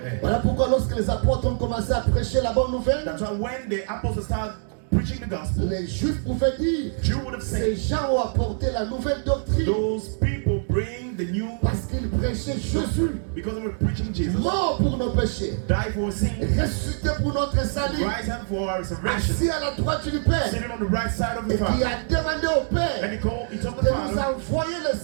Voilà pourquoi lorsque les apôtres ont commencé à prêcher la bonne nouvelle, That's why when the apostles started preaching the gospel, les Juifs pouvaient dire, Jew would have ces said, gens ont apporté la nouvelle doctrine those people bring the new parce qu'ils prêchaient Jésus, because they were preaching Jesus, mort pour nos péchés, die for sin, ressuscité pour notre salut, rise up for our salvation, assis à la droite du Père, sitting on the right side of the et qui Father. a demandé au And Père he told the de nous Father envoyer le to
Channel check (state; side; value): silent; left; digital silence